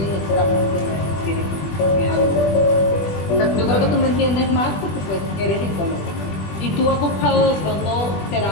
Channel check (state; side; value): late; right; 20 ms